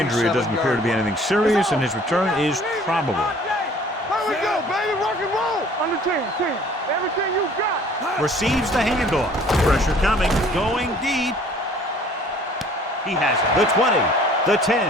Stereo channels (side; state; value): both; normal; correlation 0.53